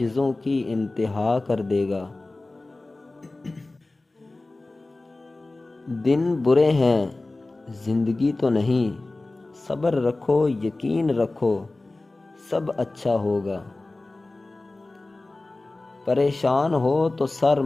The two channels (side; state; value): right; quieter; 3.0 dB